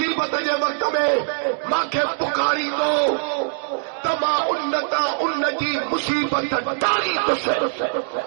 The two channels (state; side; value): silent; left; digital silence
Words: جے وقت میں ماں کے پکاری دو تما انتا ان جی مصیبت ڈالی تو سے